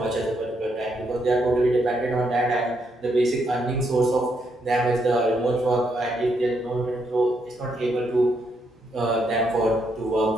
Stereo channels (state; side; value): normal; both; correlation 0.77